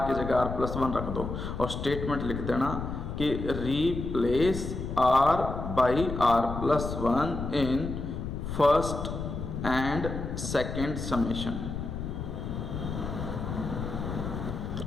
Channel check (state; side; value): noise; left; rumble, 5 dB below the sound